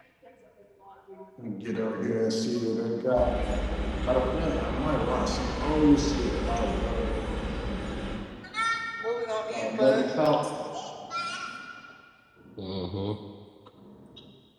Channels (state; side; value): identical; both; correlation 1.00